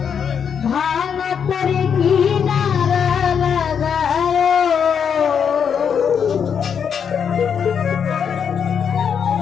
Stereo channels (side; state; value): right; quieter; 7.3 dB